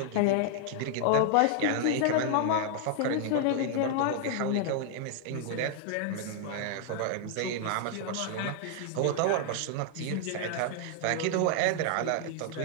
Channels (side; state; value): both; different; correlation -0.01